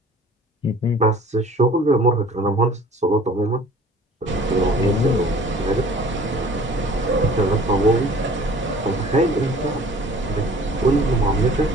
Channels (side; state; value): both; normal; correlation 0.49